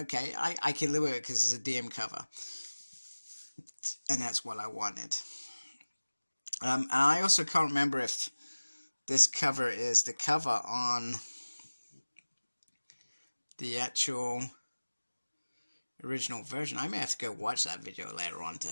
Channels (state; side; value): inverted; both; correlation -1.00